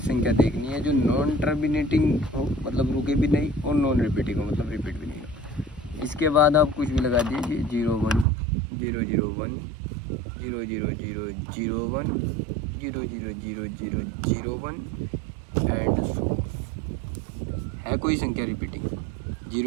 देखनी है जो नॉन टर्मिनेटिंग हो, मतलब रुके भी नहीं, और नॉन रिपीटिंग हो, मतलब रिपीट भी नहीं हो। इसके बाद आप कुछ भी लगा दीजिए, 0 1 0 0 1 0 0 0 0 1 0 0 0 0 0 1 एंड सो। है कोई संख्या रिपीटिंग?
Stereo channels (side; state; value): left; drops out; at 8.2 s